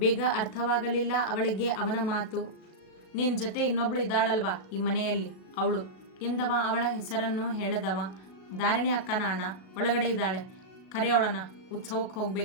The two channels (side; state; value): right; late; 37 ms